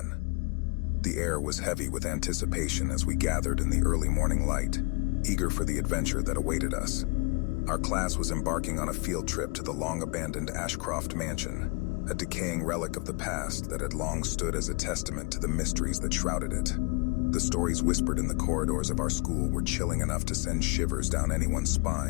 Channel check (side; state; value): right; quieter; 30.3 dB